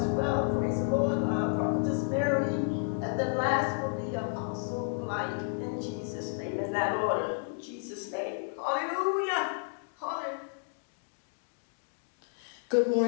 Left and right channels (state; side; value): silent; right; digital silence